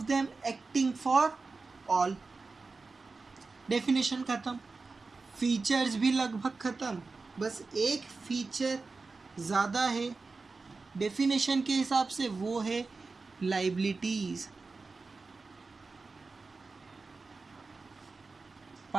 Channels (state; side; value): quieter; left; 4.0 dB